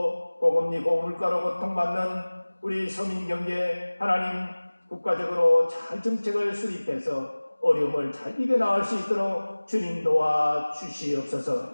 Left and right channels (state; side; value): inverted; both; correlation -1.00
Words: 고금리 고물가로 고통받는 우리 서민 경제 하나님 국가적으로 잘 정책을 수립해서 어려움을 잘 이겨나갈 수 있도록 주님 도와